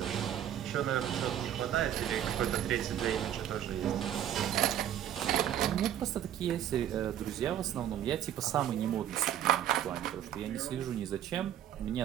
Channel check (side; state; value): left; quieter; 10.9 dB